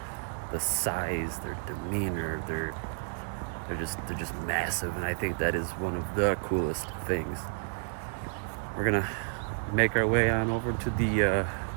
the size, their demeanor, they're just massive, and I think that is one of the coolest things. We're gonna make our way on over to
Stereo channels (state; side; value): silent; left; digital silence